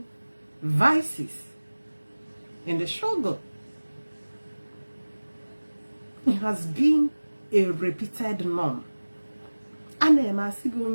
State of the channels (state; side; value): inverted; both; correlation -1.00